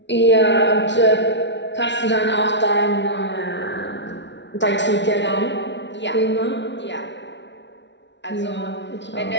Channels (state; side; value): late; right; 0.52 ms